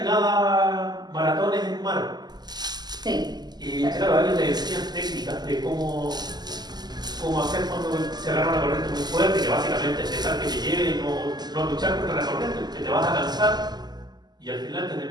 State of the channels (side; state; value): left; late; 0.20 ms